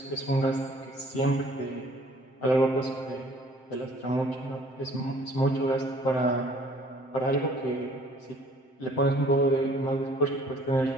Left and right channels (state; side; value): late; right; 7.7 ms